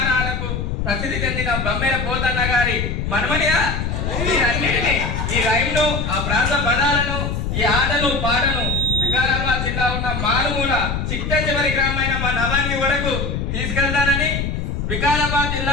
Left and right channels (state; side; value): noise; left; rumble, 2 dB below the sound